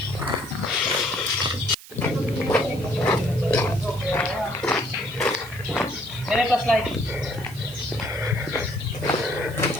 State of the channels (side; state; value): right; noise; hiss, 18 dB below the sound